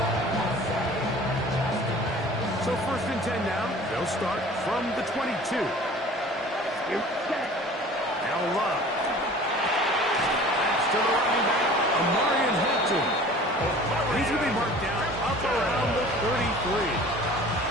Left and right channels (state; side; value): normal; both; correlation 0.45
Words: So first and 10 now. They'll start from the 22. Now Love. That's to the running back, Amarian Hampton. He's going to be marked down up around the 33.